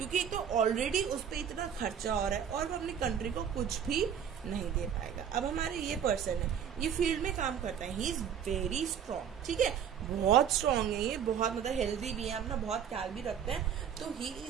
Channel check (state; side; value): quieter; left; 8.3 dB